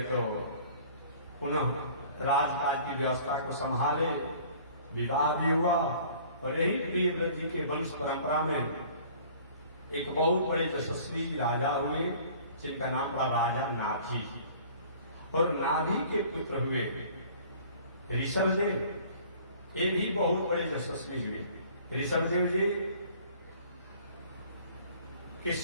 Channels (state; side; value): inverted; both; correlation -0.51